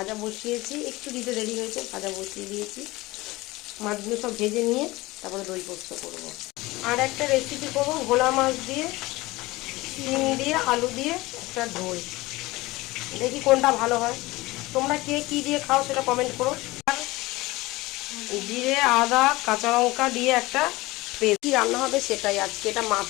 বসিয়েছি, একটু দিতে দেরি হয়েছে, ভাজা বসিয়ে দিয়েছি। মাছগুলো সব ভেজে নিয়ে তারপরে দই পোস্ত করবো। আর একটা রেসিপি করবো ভোলা মাছ দিয়ে, শিম দিয়ে, আলু দিয়ে একটা ঝোল। দেখি কোনটা ভালো হয়। তোমরা কে কী দিয়ে খাও সেটা কমেন্ট করো। আর জিরে, আদা, কাঁচা লঙ্কা দিয়ে একটা পেস্ট। কী রান্না হবে সেটাই আজকে। এটা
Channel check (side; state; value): right; quieter; 20.4 dB